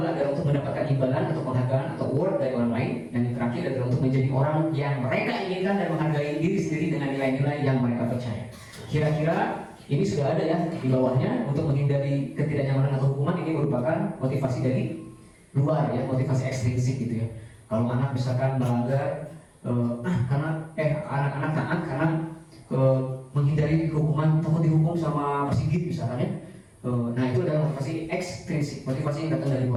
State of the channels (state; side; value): identical; both; correlation 1.00